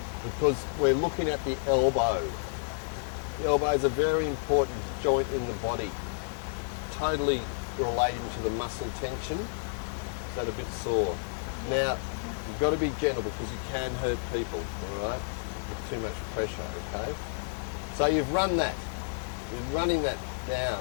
because we're looking at the elbow. The elbow is a very important joint in the body, totally relating to the muscle tension. Is that a bit sore? Now, you've got to be gentle because you can hurt people, all right, with too much pressure, okay? So you've run that. You're running that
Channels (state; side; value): silent; right; digital silence